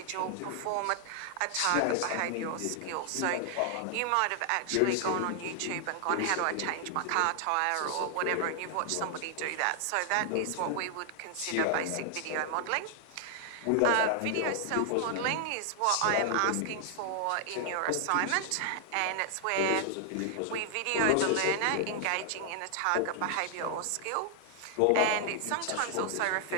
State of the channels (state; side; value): different; both; correlation 0.00